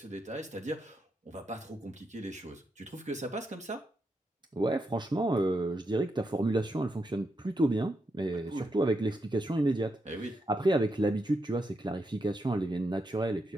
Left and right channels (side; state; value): both; normal; correlation 0.83